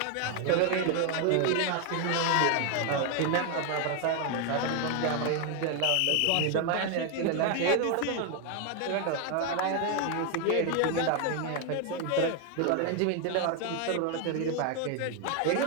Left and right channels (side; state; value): both; different; correlation 0.01